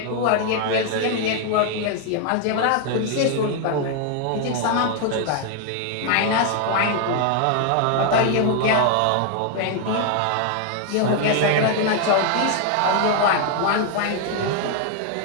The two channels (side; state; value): both; different; correlation 0.00